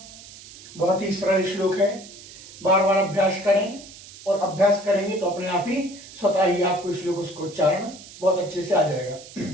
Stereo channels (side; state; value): right; noise; hiss, 18 dB below the sound